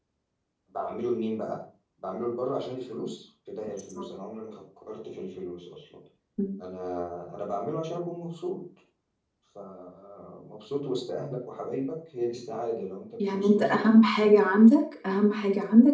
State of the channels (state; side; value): identical; both; correlation 1.00